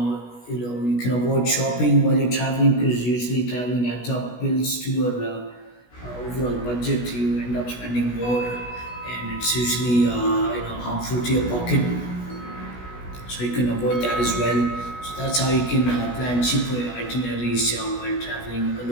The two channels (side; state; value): right; late; 16 ms